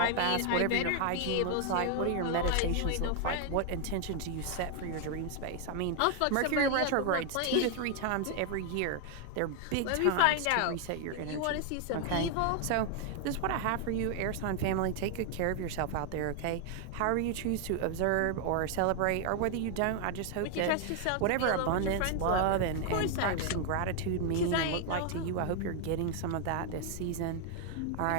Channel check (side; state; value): both; different; correlation 0.00